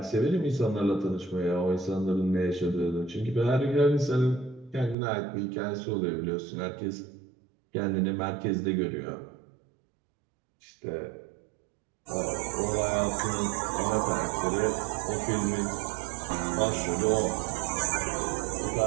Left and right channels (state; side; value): drops out; left; at 5.0 s